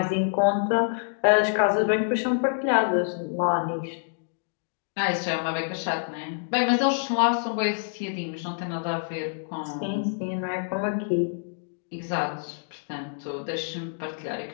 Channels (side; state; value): right; silent; digital silence